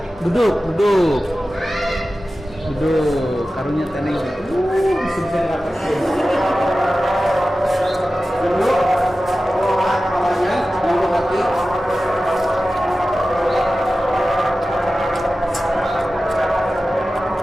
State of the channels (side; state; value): both; normal; correlation 0.95